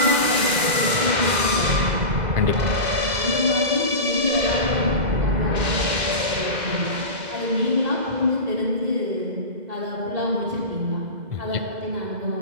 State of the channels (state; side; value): late; left; 2.0 ms